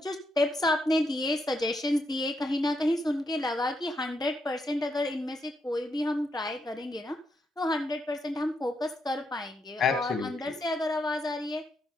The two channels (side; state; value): both; normal; correlation 0.80